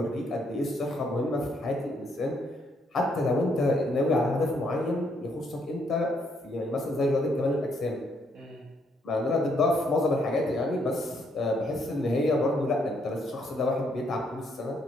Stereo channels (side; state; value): both; normal; correlation 0.72